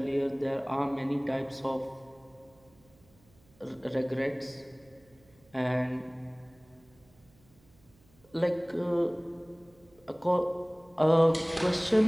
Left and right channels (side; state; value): right; noise; hum, 30 dB below the sound